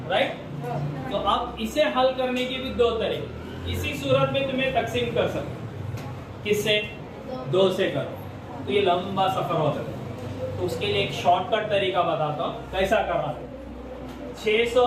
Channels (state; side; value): identical; both; correlation 1.00